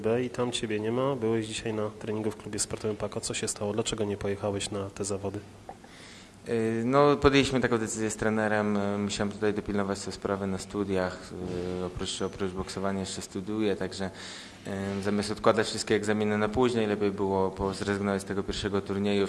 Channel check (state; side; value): identical; both; correlation 1.00